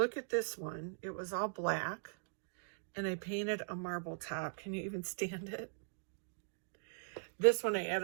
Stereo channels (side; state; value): left; silent; digital silence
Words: at this one. It was all black, and I painted a marble top. Can you even stand it? This one I